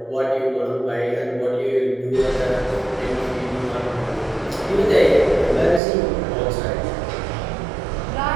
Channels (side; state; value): left; drops out; at 5.8 s